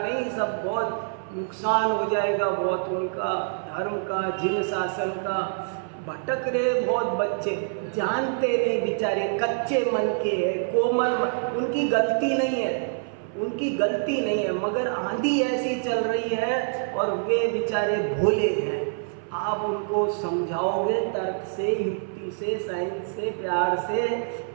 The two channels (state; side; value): silent; left; 57 dB below the other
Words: सब बहुत नुकसान हो जाएगा बहुत उनका, धर्म का, जिन शासन का। भटक रहे बहुत बच्चे, जानते नहीं बेचारे, कच्चे मन के हैं, कोमल, उनकी गलती नहीं है, मगर आंधी ऐसी चल रही है और वे बेचारे भोले हैं। आप उनको समझाओगे तर्क से, युक्ति से, साइंस से, प्यार से,